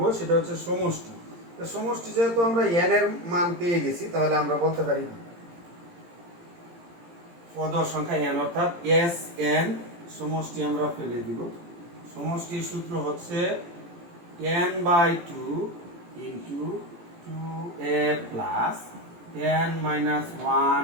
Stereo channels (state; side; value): late; left; 17 ms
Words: সেটা হচ্ছে সমষ্টি। তো সমষ্টি যেহেতু আমরা n এর মান পেয়ে গেছি, তাহলে আমরা বলতে পারি পদ সংখ্যা n অর্থাৎ Sn সমষ্টি আমরা ফেলে দিব। সমষ্টির সূত্র হচ্ছে n/2 into 2a plus n minus